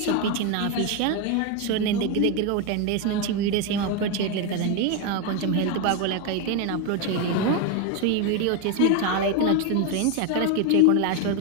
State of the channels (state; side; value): different; both; correlation 0.02